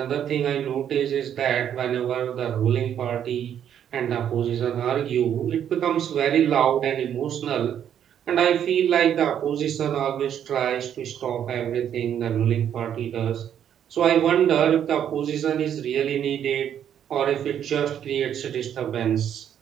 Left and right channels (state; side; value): quieter; left; 9.5 dB